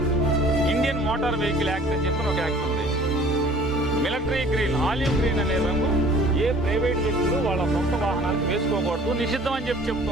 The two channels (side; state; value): both; normal; correlation 0.51